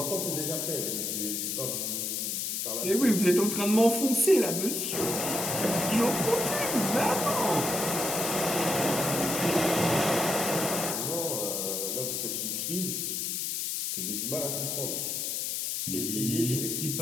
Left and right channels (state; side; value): noise; left; hiss, 1 dB below the sound